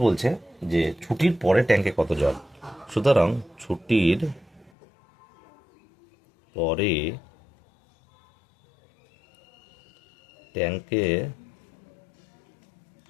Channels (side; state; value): right; drops out; at 4.7 s